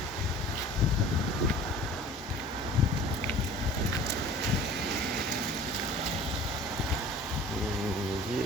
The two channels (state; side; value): normal; both; correlation 0.45